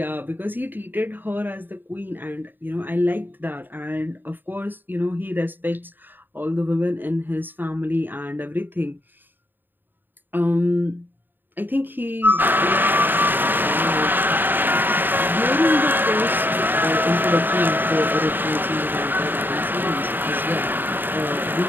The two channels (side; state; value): left; late; 0.092 ms